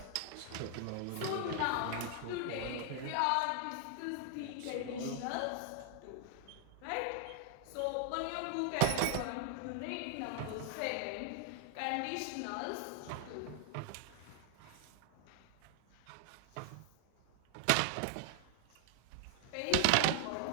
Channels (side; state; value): both; different; correlation 0.00